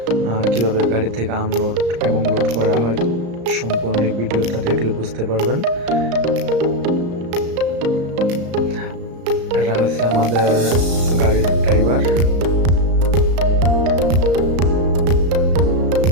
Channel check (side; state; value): left; late; 34 ms